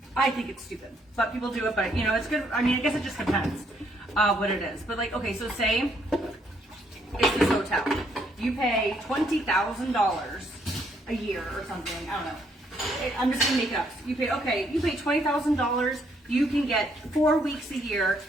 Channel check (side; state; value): both; normal; correlation 0.71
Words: I think it's stupid, but people do it, but you know, it's good. I mean, I guess it just depends what it is. But like, okay, so say it's this hotel. You pay $20,000 a year or something. I don't know. I'm just gonna make it up. You pay $20,000. You can get 4 weeks a year